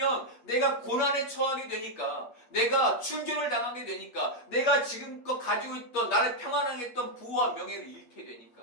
내가 고난에 처하게 되니까, 내가 출교를 당하게 되니까, 내가 지금껏 가지고 있던, 나를 평안하게 했던 부와 명예를 잃게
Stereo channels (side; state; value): right; late; 8.3 ms